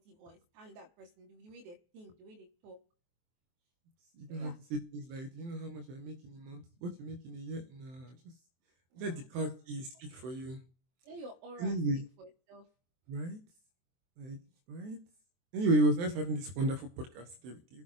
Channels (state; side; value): late; left; 23 ms